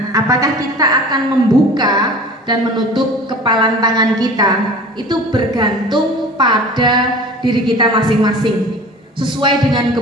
apakah kita akan membuka dan menutup kepalan tangan kita? Itu bergantung pada diri kita masing-masing, sesuai dengan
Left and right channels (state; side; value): normal; both; correlation 0.40